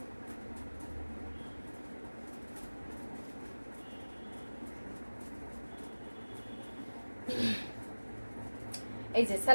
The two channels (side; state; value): both; inverted; correlation -1.00